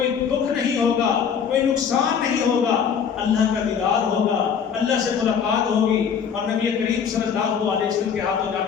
دکھ نہیں ہوگا، کوئی نقصان نہیں ہوگا، اللہ کا دیدار ہوگا، اللہ سے ملاقات ہوگی، اور نبی کریم صلی اللہ علیہ وسلم کے ہاتھوں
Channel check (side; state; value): right; quieter; 7.2 dB